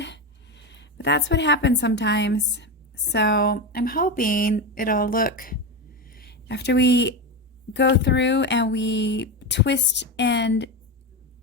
But that's what happens sometimes. So I'm hoping it'll look, after we go through and we twist and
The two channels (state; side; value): normal; both; correlation 0.17